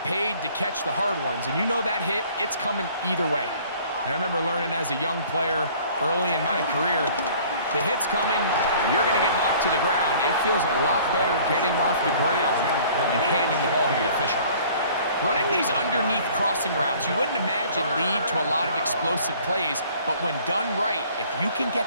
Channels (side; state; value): both; inverted; correlation -0.53